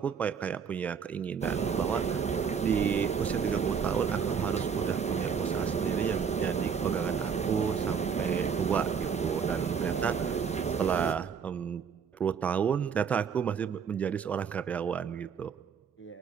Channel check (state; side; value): quieter; left; 6.8 dB